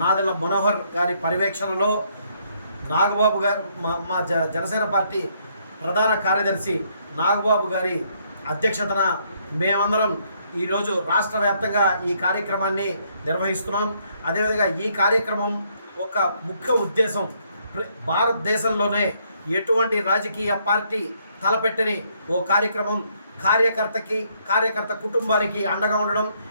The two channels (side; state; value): both; inverted; correlation -0.70